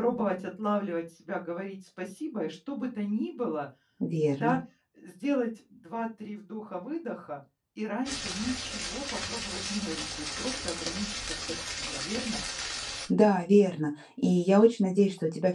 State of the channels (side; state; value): both; identical; correlation 1.00